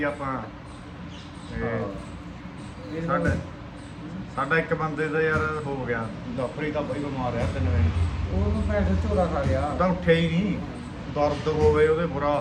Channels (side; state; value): both; identical; correlation 1.00